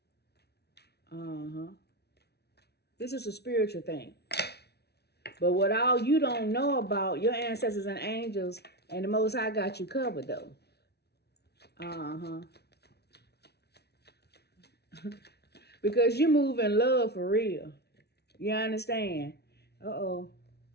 This is a spiritual thing. But what all you don't know about, your ancestors and angels and the Most High got you covered though. Because you move in love for real. You understand? Uh-oh.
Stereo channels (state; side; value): late; right; 0.48 ms